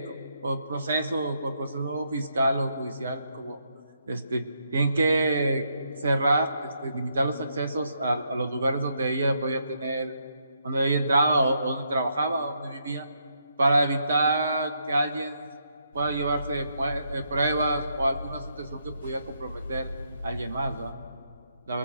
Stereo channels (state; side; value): inverted; both; correlation -0.77